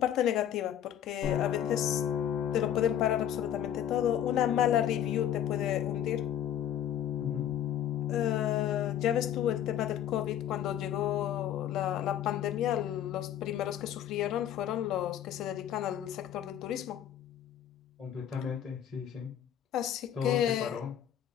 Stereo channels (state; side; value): quieter; right; 10.4 dB